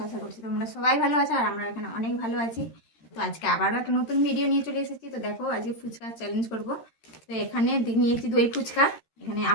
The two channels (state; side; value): late; right; 13 ms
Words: আশা করছি তোমরা সবাই ভালো আছো, আর আমরা এখানে অনেক ভালো আছি। তো আজকে আবারও একটা নতুন ভিডিও নিয়ে চলে এসেছি। তো দেখো, আজকে ফুচকা চ্যালেঞ্জ করব। তো এখানে নিয়েছি দই ফুচকা। এখানে